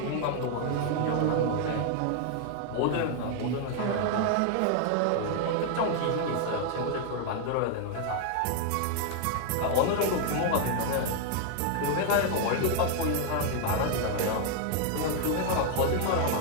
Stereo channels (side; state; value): both; different; correlation 0.00